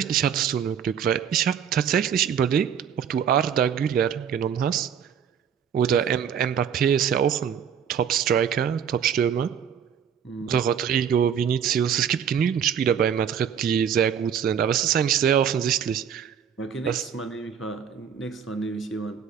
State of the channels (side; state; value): left; quieter; 8.2 dB